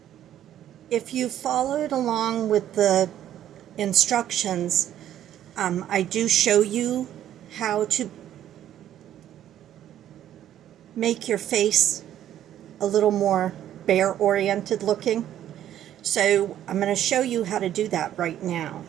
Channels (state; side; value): quieter; left; 11.4 dB